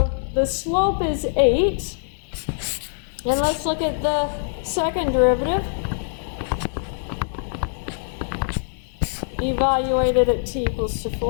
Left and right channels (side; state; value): right; silent; 63 dB below the other